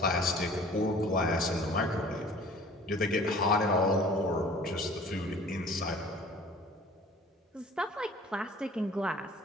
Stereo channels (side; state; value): both; normal; correlation 0.49